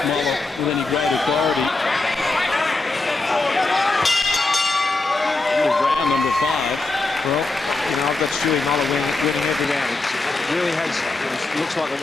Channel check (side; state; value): right; quieter; 3.3 dB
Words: Mollar with any great authority. Into round number 5. Well, you know, I've got Stewart Mollar winning every round. It really has, it looks like a